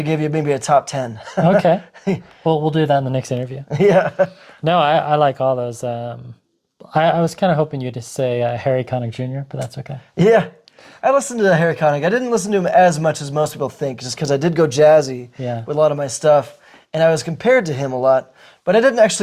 give you maybe a top 10. Okay. Well, we'll do that in the next interview. Yeah. No, I like all those. I was kind of hoping you to say Harry Connick Jr., but that's okay. Yeah. I listened to Harry Connick. I didn't listen to him as much as most people think, just because I did go jazzy with a lot of my stuff, and I was compared to him a lot, but I didn't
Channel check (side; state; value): both; identical; correlation 1.00